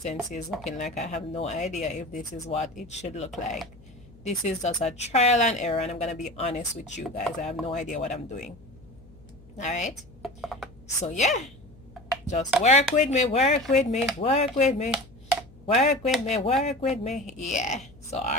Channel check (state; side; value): noise; left; hum, 23 dB below the sound